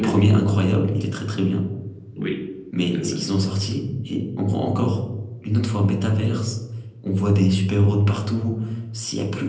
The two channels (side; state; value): both; identical; correlation 1.00